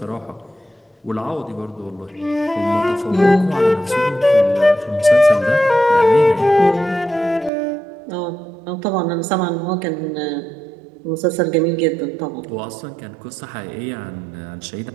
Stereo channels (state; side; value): drops out; left; at 7.5 s